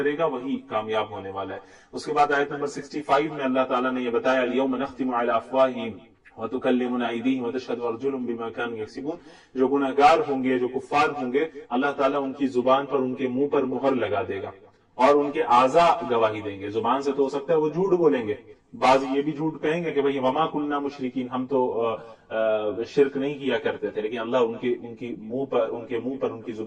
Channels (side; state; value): both; identical; correlation 1.00